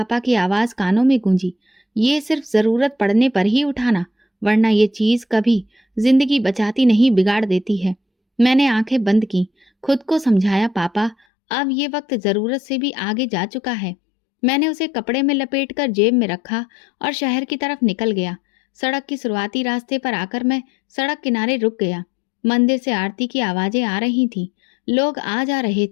की आवाज कानों में गूंजी, ये सिर्फ जरूरत पड़ने पर ही उठाना, वरना ये चीज कभी जिंदगी बचाती नहीं, बिगाड़ देती है। मैंने आंखें बंद की, खुद को समझाया, पापा अब ये वक्त जरूरत से भी आगे जा चुका है। मैंने उसे कपड़े में लपेटकर जेब में रखा और शहर की तरफ निकल गया। सड़क की शुरुआती रास्ते पर आकर मैं सड़क किनारे रुक गया। मंदिर से आरती की आवाजें आ रही थीं, लोग आ जा रहे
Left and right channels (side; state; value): right; drops out; at 11.2 s